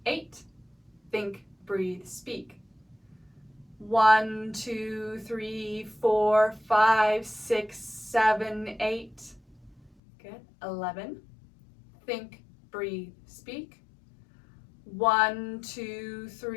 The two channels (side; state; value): right; drops out; at 9.9 s